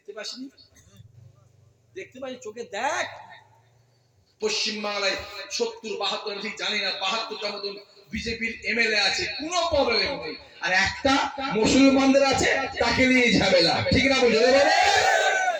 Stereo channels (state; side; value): identical; both; correlation 1.00